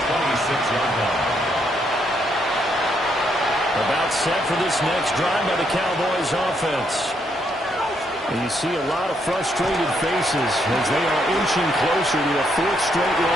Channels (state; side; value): normal; both; correlation 0.75